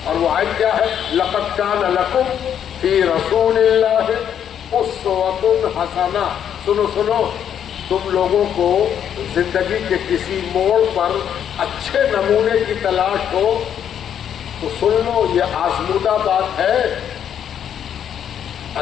اور وہ آیت کیا ہے؟ لَقَدْ كَانَ لَكُمْ فِي رَسُولِ اللَّهِ أُسْوَةٌ حَسَنَةٌ۔ سنو سنو، تم لوگوں کو زندگی کے کسی موڑ پر اچھے نمونے کی تلاش ہو تو سن لو، یہ آزمودہ بات ہے۔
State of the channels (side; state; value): right; quieter; 9.1 dB